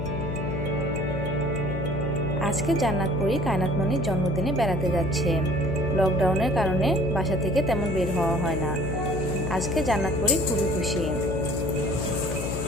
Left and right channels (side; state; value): left; noise; hum, 4 dB below the sound